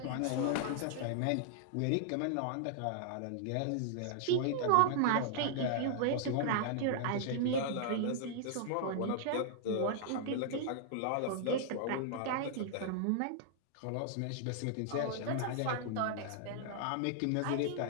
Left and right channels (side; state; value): both; different; correlation -0.01